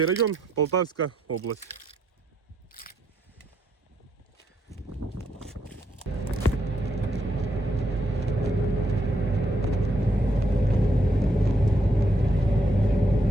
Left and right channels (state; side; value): normal; both; correlation 0.77